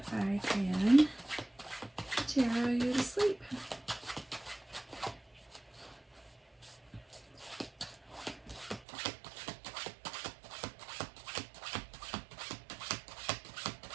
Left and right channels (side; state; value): left; drops out; at 8.8 s